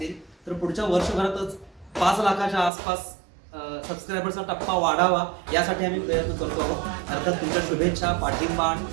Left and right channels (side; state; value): left; drops out; at 2.7 s